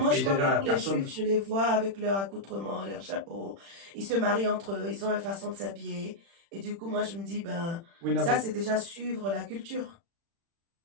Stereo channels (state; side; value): late; left; 36 ms